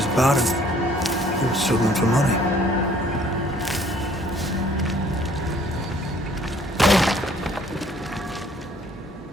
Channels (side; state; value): both; normal; correlation 0.59